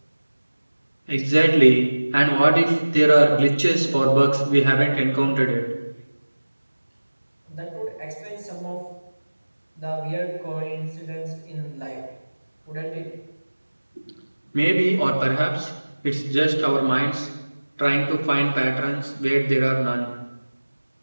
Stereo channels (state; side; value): inverted; both; correlation -1.00